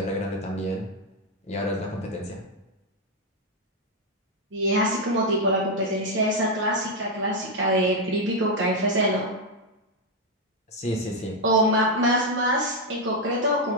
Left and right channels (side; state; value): both; normal; correlation 0.02